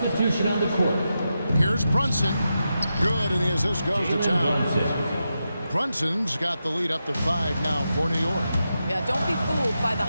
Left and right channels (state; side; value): inverted; both; correlation -0.88